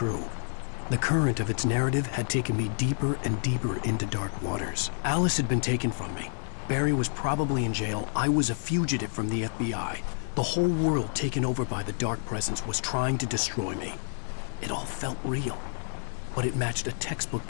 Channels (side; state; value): right; silent; digital silence